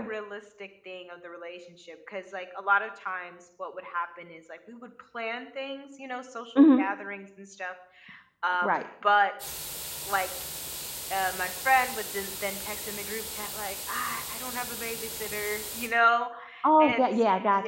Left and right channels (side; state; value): both; identical; correlation 1.00